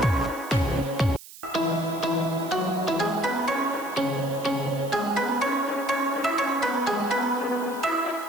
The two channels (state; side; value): noise; right; hiss, 17 dB below the sound